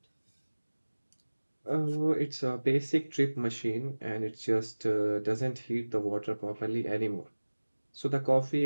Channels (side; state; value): both; inverted; correlation -1.00